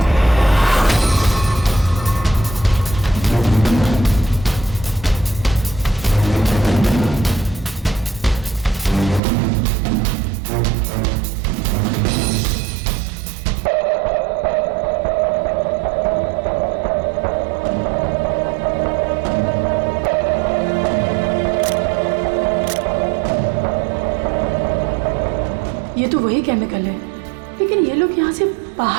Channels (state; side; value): drops out; left; at 9.2 s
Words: ये तो वही केमिकल है, लेकिन ये लोग यहाँ से